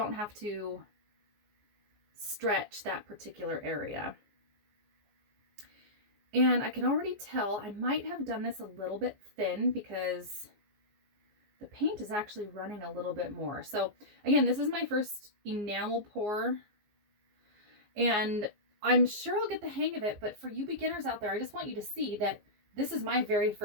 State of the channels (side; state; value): left; late; 14 ms